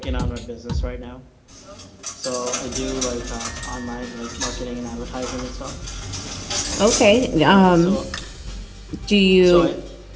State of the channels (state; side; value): identical; both; correlation 1.00